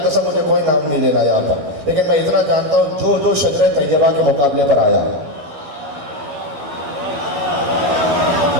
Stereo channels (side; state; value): left; late; 13 ms